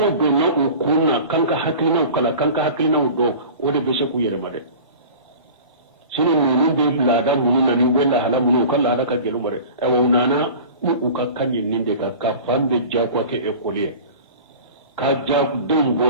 do na ukunna kanka haklina kala kanka haklina do wode be se ku yere made sino nunu be lada mununa ni wella hala munu kala da ka gelu mare e wonana u ka kanyin ninde ka fambe jakwa ke ekolier ka jak dum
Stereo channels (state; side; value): inverted; both; correlation -0.39